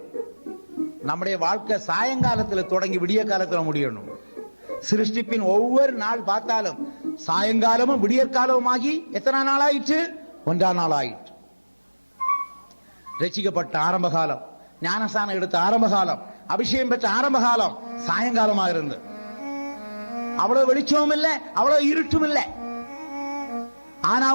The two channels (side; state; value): both; inverted; correlation -1.00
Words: நம்முடைய வாழ்க்கை சாயங்காலத்தில் தொடங்கி விடிய காலத்தில் முடியணும். சிருஷ்டிப்பின் ஒவ்வொரு நாள் பார்த்தாலும் சாயங்காலமும் விடியற்காலமும் ஆகி எத்தனை நாள் ஆயிற்று? 1 நாள் ஆயிற்று. ரட்சிக்கப்பட்ட ஆரம்ப காலம், ஞானஸ்தானம் எடுத்த ஆரம்ப காலம், அபிஷேகம் பெற்ற ஆரம்ப காலம் சாயங்காலமாக இருந்தது. அவ்வளவு வெளிச்சமும் இல்லை, அவ்வளவு இருட்டும் இல்லை. ஆனா